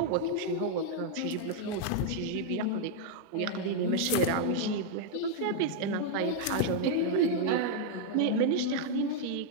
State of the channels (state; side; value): different; both; correlation 0.00